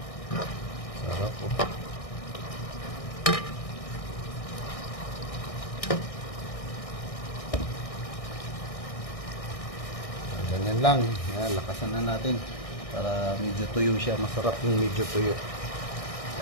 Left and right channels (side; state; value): right; late; 1.6 ms